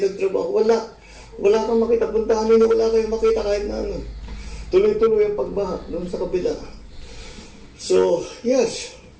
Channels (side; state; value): both; identical; correlation 1.00